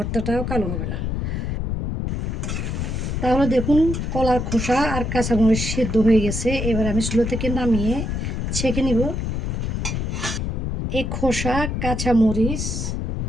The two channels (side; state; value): left; noise; rumble, 2 dB below the sound